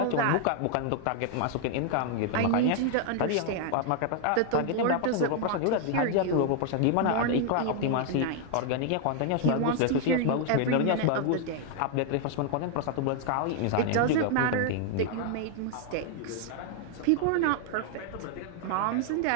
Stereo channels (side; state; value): both; different; correlation 0.00